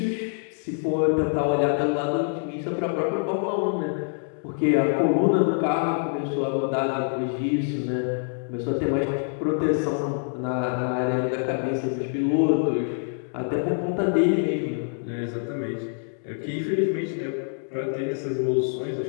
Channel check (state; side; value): silent; right; 61 dB below the other